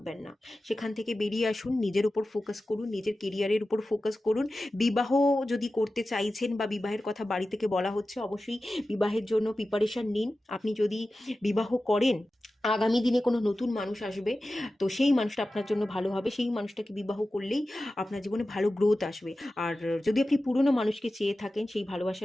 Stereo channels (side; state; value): both; normal; correlation 0.94